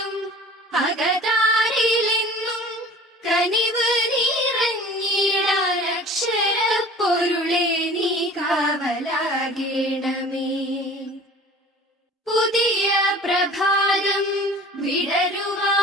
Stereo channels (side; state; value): both; normal; correlation 0.44